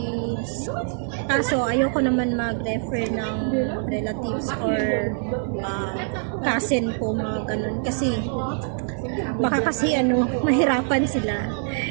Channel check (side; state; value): left; silent; 62 dB below the other